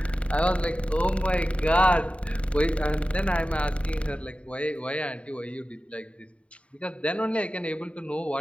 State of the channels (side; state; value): right; late; 0.062 ms